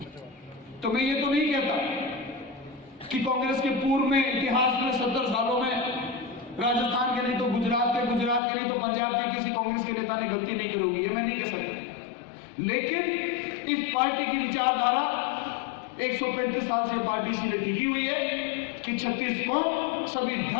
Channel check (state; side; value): drops out; right; at 8.4 s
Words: तो मैं ये तो नहीं कहता कि कांग्रेस के पूर्व में इतिहास में 70 सालों में राजस्थान के नहीं तो गुजरात के नहीं तो पंजाब के किसी कांग्रेस के नेता ने गलती नहीं की होगी, ये मैं नहीं कह सकता। लेकिन इस पार्टी की विचारधारा 135 साल से पार्टी इसीलिए टिकी हुई है कि 36 कौम, सभी